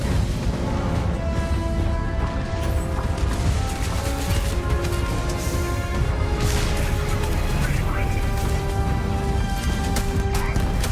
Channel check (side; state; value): both; identical; correlation 1.00